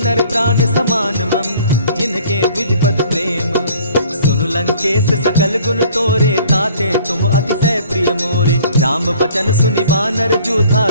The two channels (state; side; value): inverted; both; correlation -0.54